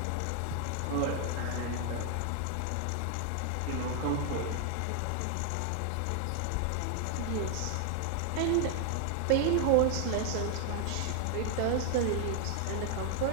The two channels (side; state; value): both; different; correlation 0.00